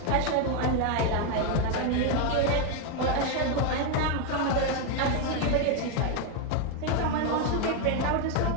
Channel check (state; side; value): different; both; correlation 0.01